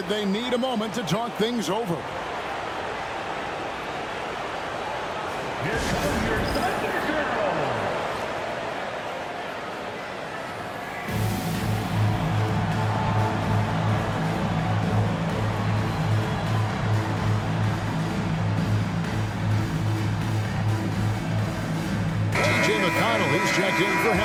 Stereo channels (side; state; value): both; identical; correlation 1.00